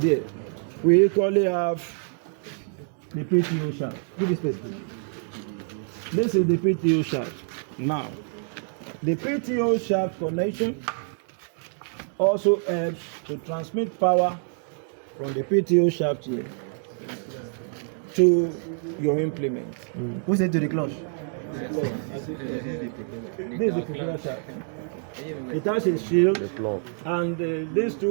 We equally have the PTO shaft. Give me space, please. This is the PTO shaft. Now, the PTO shaft connection also helps to transmit power from the PTO shaft here to your implement. Who's it to the clutch? This is the propeller shaft. It has a shield, and these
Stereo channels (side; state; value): left; silent; 57 dB below the other